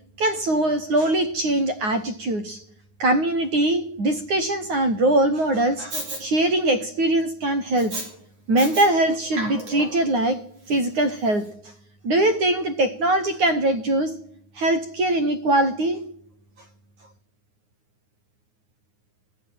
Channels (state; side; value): late; left; 9.6 ms